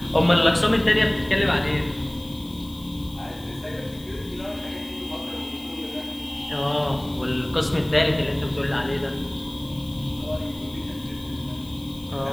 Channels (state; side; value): noise; left; hiss, 22 dB below the sound